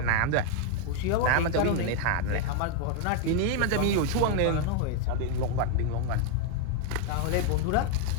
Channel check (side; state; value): both; different; correlation 0.00